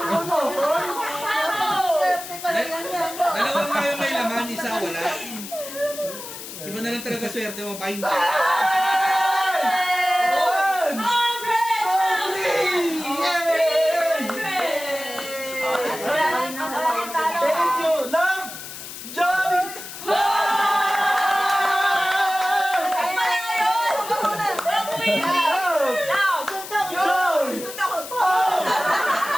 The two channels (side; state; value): left; noise; hiss, 11 dB below the sound